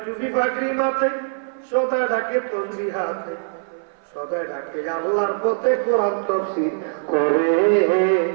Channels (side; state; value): left; silent; 59 dB below the other